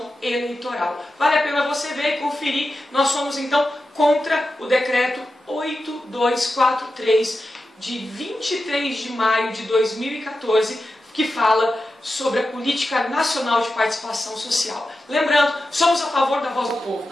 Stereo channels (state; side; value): normal; both; correlation 0.92